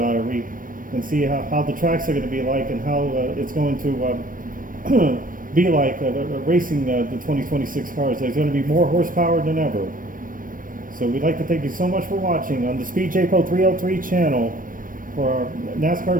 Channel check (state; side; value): late; left; 0.40 ms